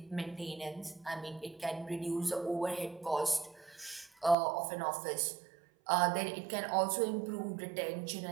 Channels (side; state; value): left; drops out; at 4.4 s